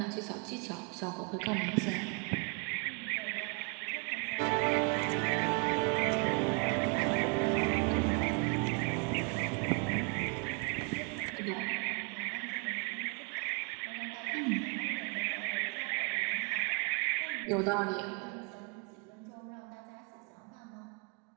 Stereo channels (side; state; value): left; quieter; 34.5 dB